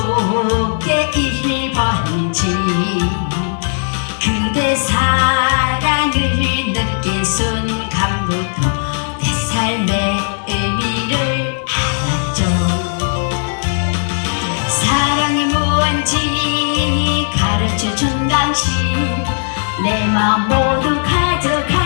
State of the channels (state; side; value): silent; right; digital silence